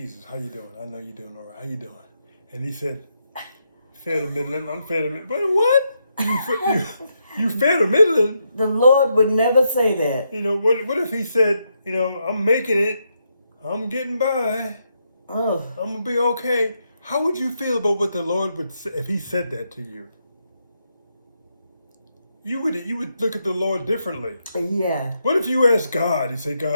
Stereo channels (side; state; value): both; inverted; correlation -0.81